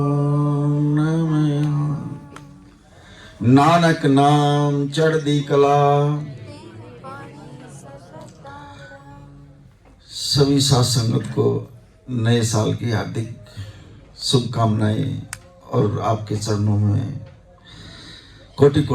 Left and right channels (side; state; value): both; identical; correlation 1.00